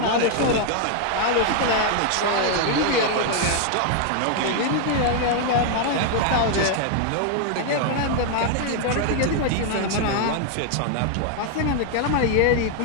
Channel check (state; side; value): different; both; correlation 0.00